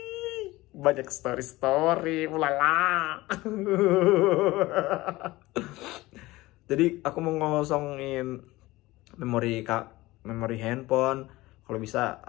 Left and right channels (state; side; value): quieter; right; 19.2 dB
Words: banyak story ulala. Jadi aku mau ngosongin memori handphone. Kalau bisa